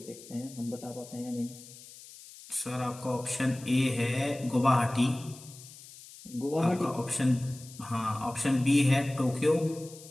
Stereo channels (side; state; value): left; noise; hiss, 18 dB below the sound